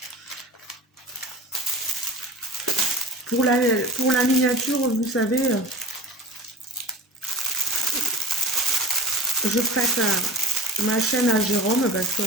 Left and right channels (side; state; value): both; normal; correlation 0.37